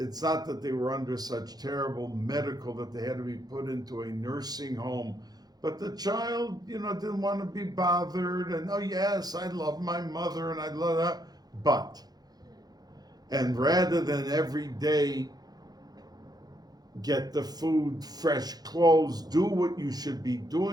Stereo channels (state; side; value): late; left; 0.19 ms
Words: not that they were under such terrible medical that they had to be put into a nursing home, but the child, didn't want to be bothered, and oh yes, I love my mother, and I love that, but, and rather than every day get the food, fresh clothes, do what you should be